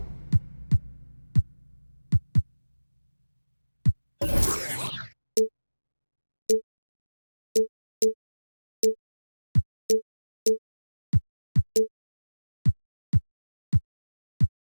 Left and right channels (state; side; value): inverted; both; correlation -1.00